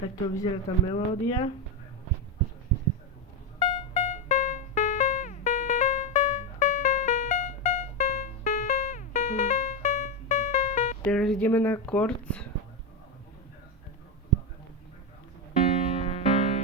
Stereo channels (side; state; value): both; normal; correlation 0.09